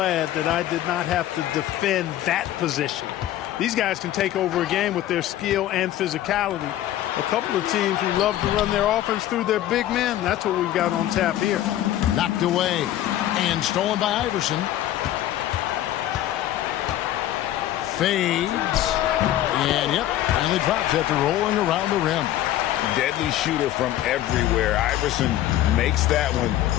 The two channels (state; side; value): quieter; right; 13.2 dB